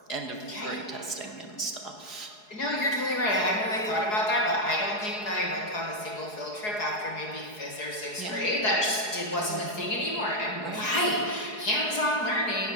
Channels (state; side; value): late; right; 4.8 ms